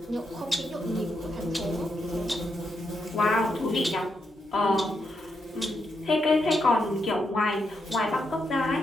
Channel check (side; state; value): both; normal; correlation 0.82